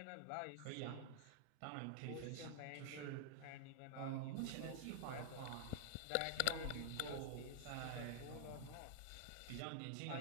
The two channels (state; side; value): different; both; correlation -0.01